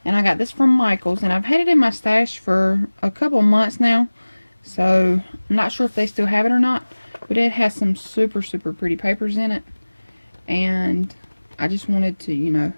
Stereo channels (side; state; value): both; inverted; correlation -1.00